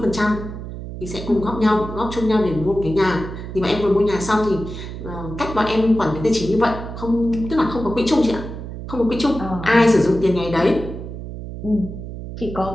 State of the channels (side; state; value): right; noise; hum, 9 dB below the sound